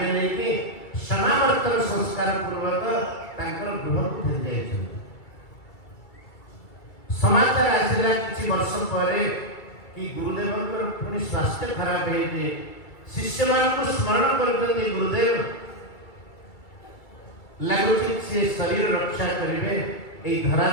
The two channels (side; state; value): right; late; 2.3 ms